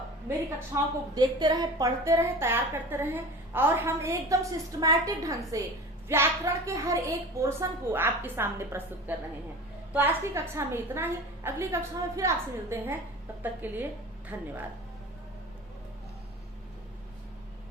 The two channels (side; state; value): both; normal; correlation 0.36